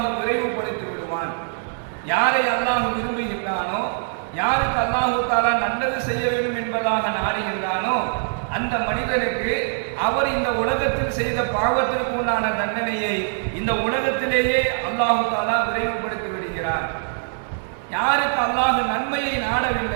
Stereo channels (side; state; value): left; silent; 61 dB below the other